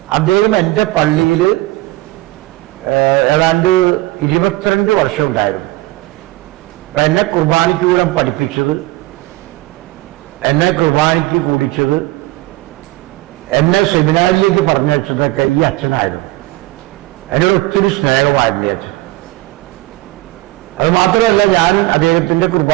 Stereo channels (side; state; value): left; quieter; 18.9 dB